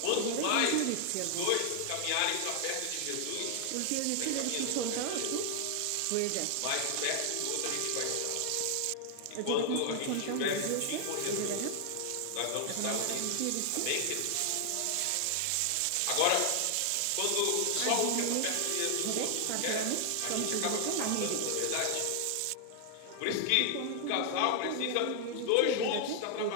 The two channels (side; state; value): both; different; correlation 0.00